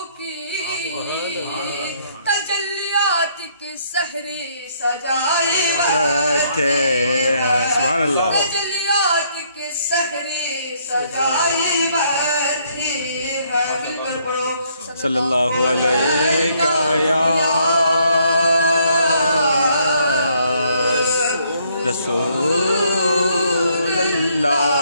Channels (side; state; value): both; inverted; correlation -0.69